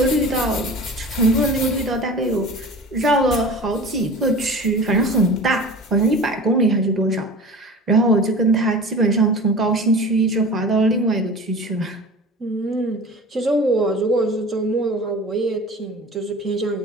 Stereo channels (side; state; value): both; normal; correlation 0.38